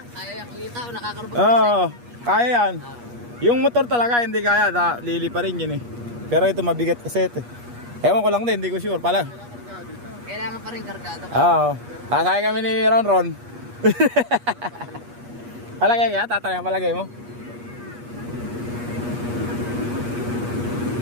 Kaya yan, kita o nakakarapag Oo, kaya yan. Yung motor talaga hindi kaya, lili pa rin yun eh. Pero ito mabigat kasi ito eh. Ewan ko lang din, hindi ko sure. Kailangan pa rin kargado. Oo. Sasakay kami ni Ron. Palagay kaya, tatanay ang palagay mo.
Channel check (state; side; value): late; left; 8.4 ms